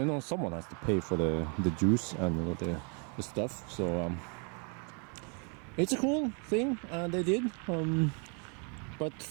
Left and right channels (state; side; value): quieter; left; 37.6 dB